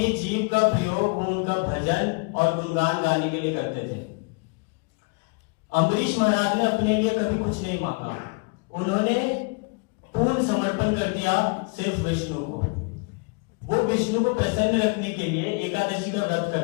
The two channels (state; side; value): quieter; right; 32.5 dB